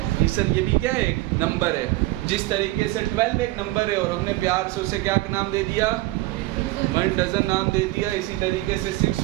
सर, ये भी क्या है, एक नंबर है। जिस तरीके से 12 एक नंबर है और हमने प्यार से उसे क्या नाम दे दिया, 1 डजन नाम दे दिया, इसी तरीके से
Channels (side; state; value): left; quieter; 18.9 dB